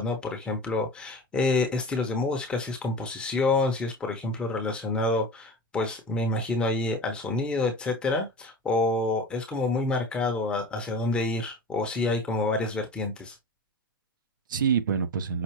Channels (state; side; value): normal; both; correlation 0.31